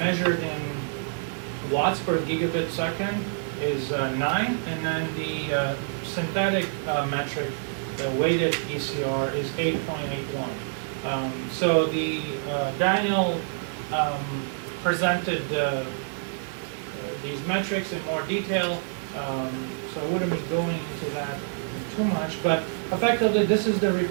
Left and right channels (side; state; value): left; silent; digital silence